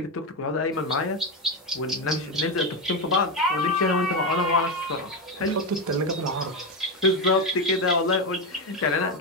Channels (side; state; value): both; normal; correlation 0.11